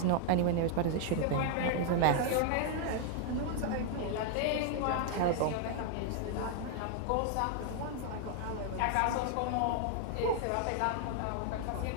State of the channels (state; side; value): different; both; correlation 0.00